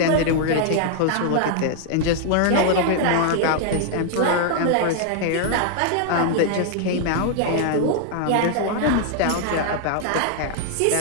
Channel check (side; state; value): both; different; correlation 0.00